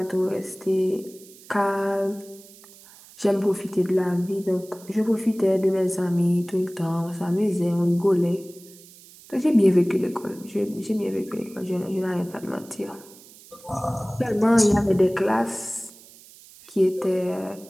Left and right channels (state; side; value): noise; right; hiss, 22 dB below the sound